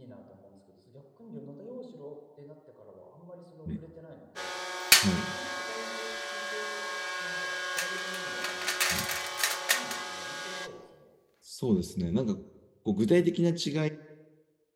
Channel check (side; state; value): both; identical; correlation 1.00